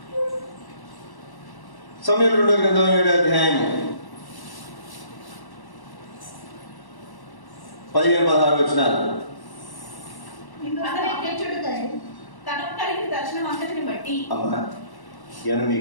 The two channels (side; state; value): right; late; 1.1 ms